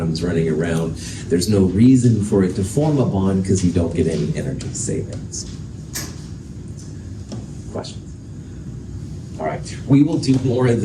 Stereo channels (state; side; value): identical; both; correlation 1.00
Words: running around. There's no reason for it to form a bond because you don't get any energy savings. Questions? All right. We will do more of